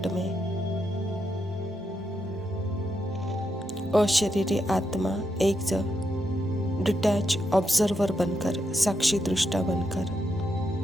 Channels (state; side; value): normal; both; correlation 0.82